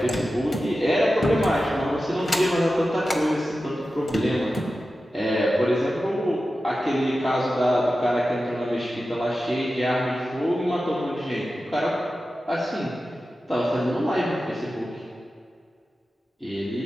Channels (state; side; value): normal; both; correlation 0.93